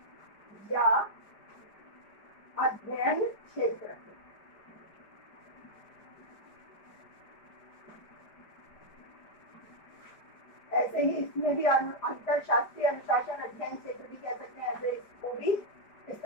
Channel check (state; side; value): late; right; 4.9 ms